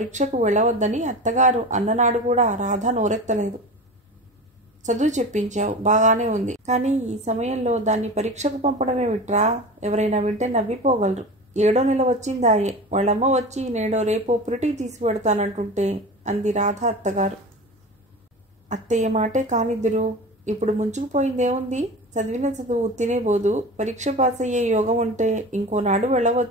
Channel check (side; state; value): both; normal; correlation 0.31